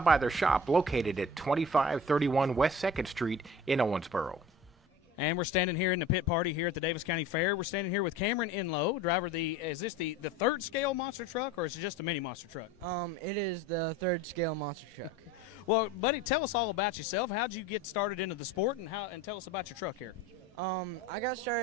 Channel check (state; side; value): normal; both; correlation 0.40